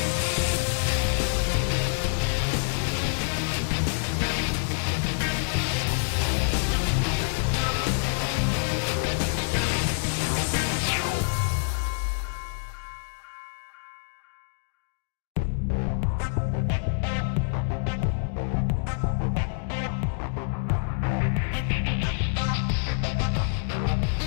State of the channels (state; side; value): silent; right; digital silence